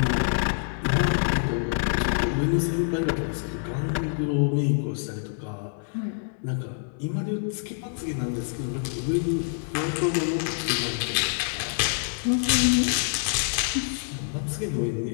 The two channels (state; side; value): silent; right; digital silence